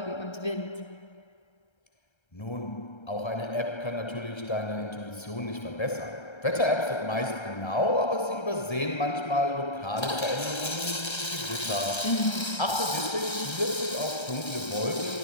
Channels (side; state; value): right; late; 1.3 ms